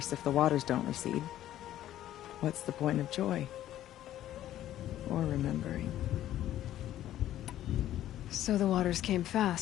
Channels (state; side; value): quieter; right; 12.7 dB